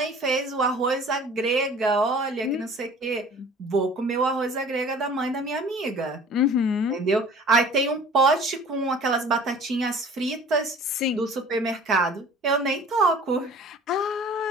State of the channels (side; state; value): both; normal; correlation 0.46